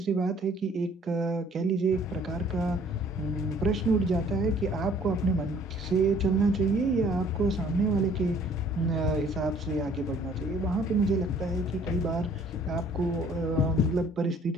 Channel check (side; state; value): both; normal; correlation 0.57